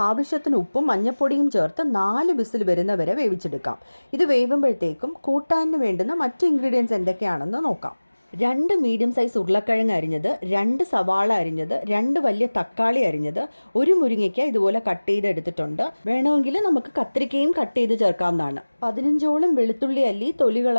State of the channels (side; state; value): both; inverted; correlation -1.00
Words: ആവശ്യത്തിന് ഉപ്പും മഞ്ഞൾപ്പൊടിയും ചേർത്ത് 4 വിസിൽ വരുന്നവരെ വേവിച്ചെടുക്കാം. ഇത് വേവുമ്പോഴത്തേക്കും കൂട്ടാനിന് വേണ്ടുന്ന മറ്റ് ഇൻഗ്രീഡിയൻസ് എന്തൊക്കെയാണെന്ന് നോക്കാം. 2 മീഡിയം സൈസ് ഉരുളക്കിഴങ്ങ് അരിഞ്ഞത്, 2 സവാള അരിഞ്ഞത്, 2 വലിയ തക്കാളി അരിഞ്ഞത്, 1 മുരിങ്ങയ്ക്ക ഇതുപോലെ കട്ട് ചെയ്ത് എടുത്തിട്ടുണ്ട്. വേണമെങ്കിൽ നമുക്ക് കത്തിരിക്കയും കട്ട് ചെയ്ത് ചേർക്കാവുന്നതാണ്. 15ഓളം വെളുത്തുള്ളി അല്ലി തൊലി